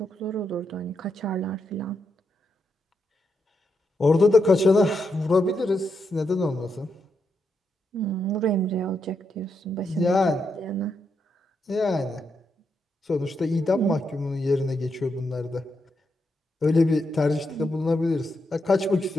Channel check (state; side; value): normal; both; correlation 0.82